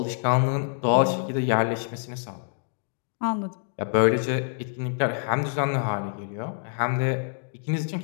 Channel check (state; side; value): silent; right; digital silence